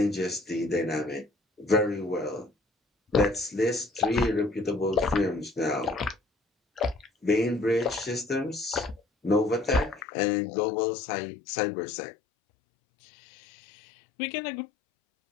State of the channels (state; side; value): drops out; right; at 10.0 s